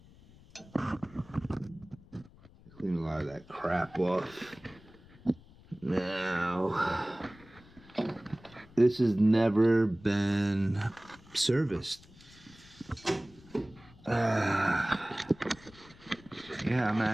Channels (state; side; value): noise; left; rumble, 24 dB below the sound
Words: Clean a lot of that crap off. Now, this has never been serviced. Yeah, I'm